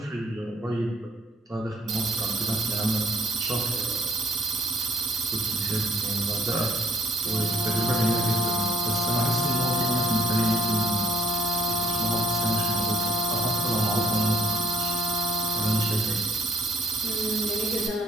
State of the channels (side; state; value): both; normal; correlation 0.66